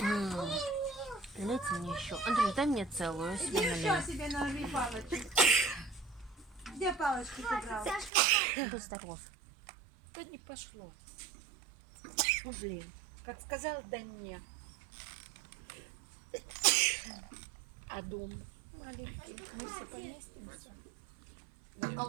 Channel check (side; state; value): left; drops out; at 8.1 s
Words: мне еще. Андрюш, дай мне целую, я Иди себе еще налью. себе налей палочек. Где палочки ты брал? Будь здоров. Да не пошло. Ну, блин, как сказал, да не. А дом маленький, мы все поместимся.